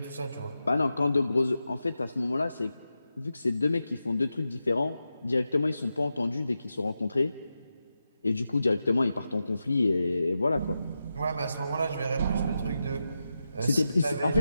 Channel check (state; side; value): inverted; both; correlation -0.90